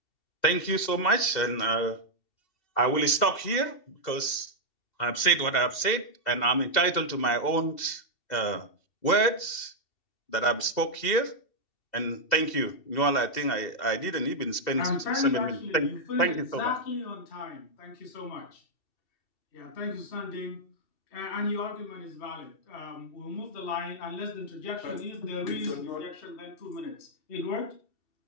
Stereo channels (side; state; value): right; late; 2.7 ms